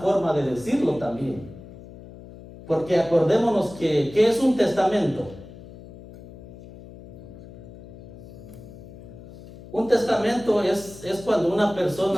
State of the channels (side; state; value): left; noise; hum, 17 dB below the sound